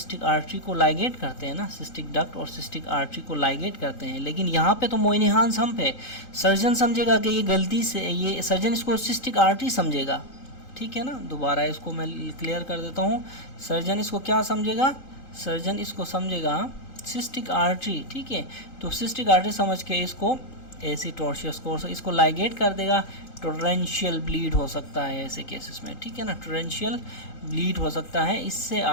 आर्टरी को लाइगेट करते हैं ना, सिस्टिक डक्ट और सिस्टिक आर्टरी को लाइगेट करते हैं, लेकिन यहाँ पे तो मोयनीहांस हम्प है। सर्जन समझेगा कि ये गलती से, ये सर्जन इसको सिस्टिक आर्टरी समझेगा, ठीक है ना। दोबारा इसको मैं क्लियर कर देता हूँ, सर्जन इसको क्या समझेगा, सर्जन इसको समझेगा सिस्टिक आर्टरी, ठीक है। तो सिस्टिक आर्टरी समझ के इसको ऐसी टॉर्शियस कोर्स इसको लाइगेट कर देगा। टोरेंशियल ब्लीड हो सकता है ऐसे केसेस में, ठीक है ना, टोरेंशियल ब्लीड हो सकता है। इससे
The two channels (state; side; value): late; right; 3.8 ms